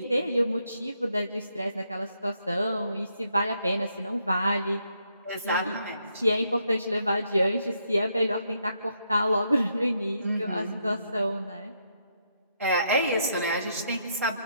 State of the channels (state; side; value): inverted; both; correlation -0.76